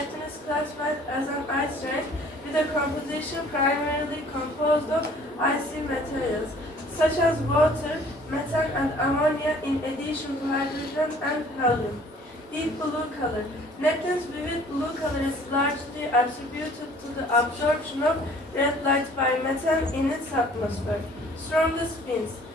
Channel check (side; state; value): both; normal; correlation 0.54